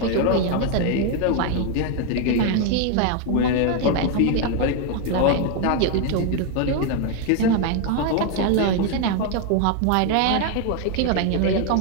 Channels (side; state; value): both; different; correlation 0.01